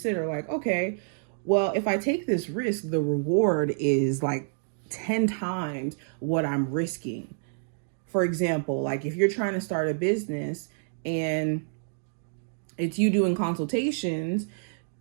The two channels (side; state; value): left; silent; digital silence